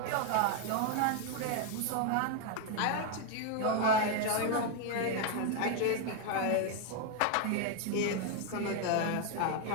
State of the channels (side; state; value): both; different; correlation 0.00